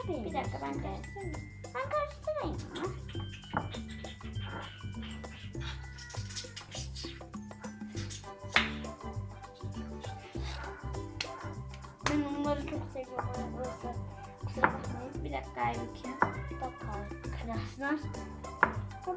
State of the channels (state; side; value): identical; both; correlation 1.00